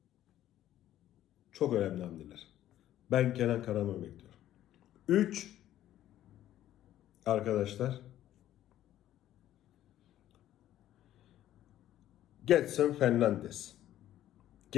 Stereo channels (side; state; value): right; quieter; 12.7 dB